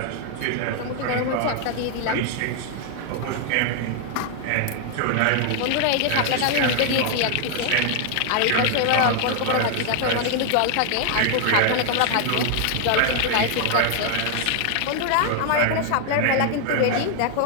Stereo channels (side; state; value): both; different; correlation 0.00